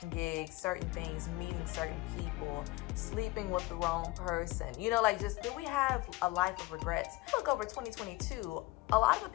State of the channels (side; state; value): right; quieter; 20.2 dB